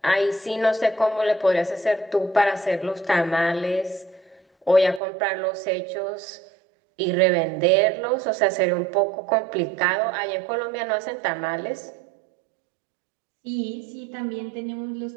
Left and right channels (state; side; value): drops out; left; at 5.0 s